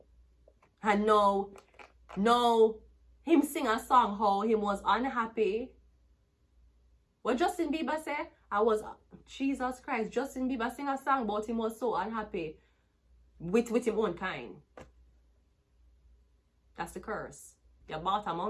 And no, him sing a song how he was unhappy. What Justin Bieber said? Jesus Christ, Justin Bieber sing a song about him was so unhappy with him own kind. That's the curse. You bought a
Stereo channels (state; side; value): identical; both; correlation 1.00